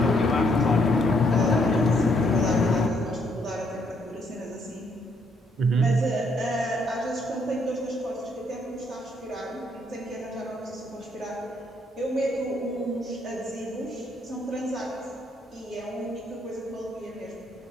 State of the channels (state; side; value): normal; both; correlation 0.71